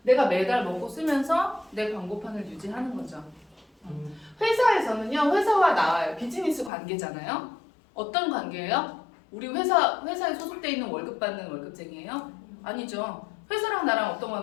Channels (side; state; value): right; drops out; at 6.7 s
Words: 내가 매달 먹고 쓰면서 내 광고판을 유지하는 거죠. 회사에서는요, 회사와 나와요. 비즈니스 관계잖아요. 어떤 관계예요? 우리 회사에 소속돼 있는 월급 받는 월급쟁이에요? 아니죠. 회사랑 나랑 어떤